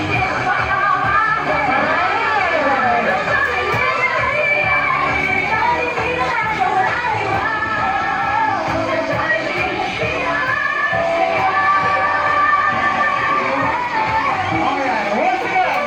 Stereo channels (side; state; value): both; identical; correlation 1.00